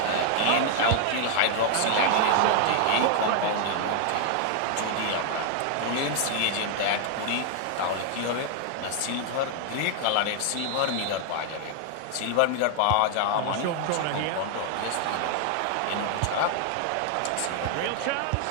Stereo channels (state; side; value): different; both; correlation 0.00